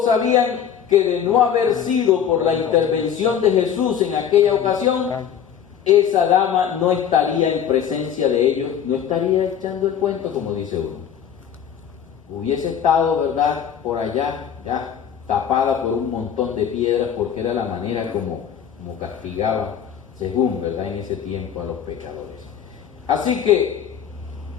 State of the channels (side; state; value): right; quieter; 8.6 dB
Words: sabían que de no haber sido por la intervención de Jesús en aquella ocasión, esa dama no estaría en presencia de ellos, no estaría echando el cuento, como dice uno. Hubiese estado, ¿verdad?, por allá, ya tapada por un montón de piedras, porque era la manera como castigaba, según, ¿verdad?, en ese tiempo a los pecadores. Así que,